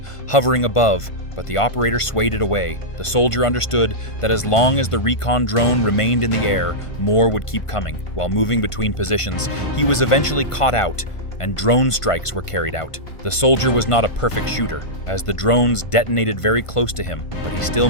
hovering above, but the operator swayed it away. The soldier understood that as long as the recon drone remained in the air, more would keep coming. While moving between positions, he was eventually caught out, and drone strikes were carried out. The soldier was not a perfect shooter, as the drones detonated very close to him, but he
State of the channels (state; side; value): late; right; 1.5 ms